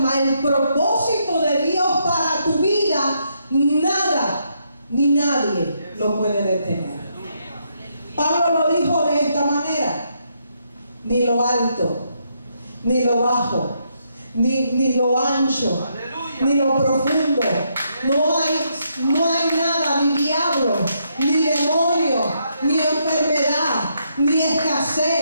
El propósito de Dios para tu vida, nada ni nadie lo puede detener. Pablo lo dijo de esta manera: ni lo alto, ni lo bajo, ni lo ancho, ni lo profundo. No hay nada, ni diablo, ni demonio, ni enfermedad, ni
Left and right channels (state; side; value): inverted; both; correlation -0.77